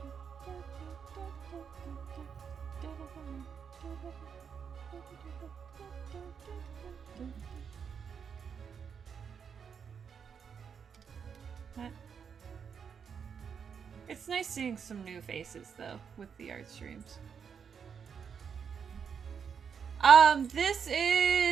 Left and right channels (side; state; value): left; quieter; 6.9 dB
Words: It's nice seeing some new faces, though, with the art streams. This